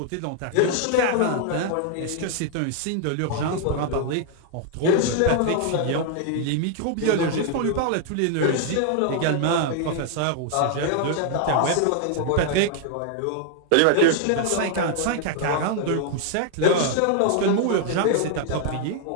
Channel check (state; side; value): different; both; correlation 0.00